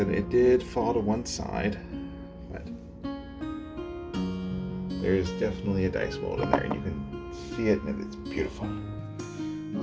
it did fall to one side, but there's definitely a dice mold in there, and you can see it, and it's beautiful.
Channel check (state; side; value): identical; both; correlation 1.00